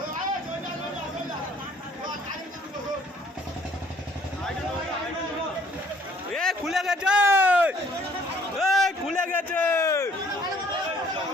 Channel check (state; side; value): normal; both; correlation 0.60